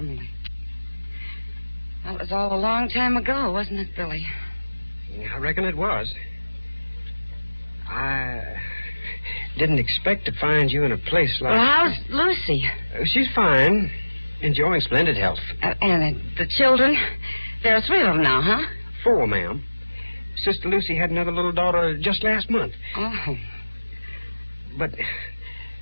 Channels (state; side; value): inverted; both; correlation -1.00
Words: That was all a long time ago, wasn't it, Billy? I reckon it was. I didn't expect to find you in a place like... Well, how's Lucy? She's fine. Enjoying splendid health. And the children? There are 3 of them now, huh? 4, ma'am. Sister Lucy had another little daughter just last month. Oh. But